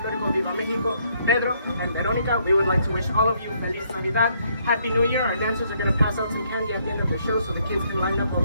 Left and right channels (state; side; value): inverted; both; correlation -0.69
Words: Viva Mexico, Pedro and Veronica, we would like to wish all of you Feliz Navidad, Happy New Year. Our dancers are going to pass out some candy at the end of the show so the kids can line up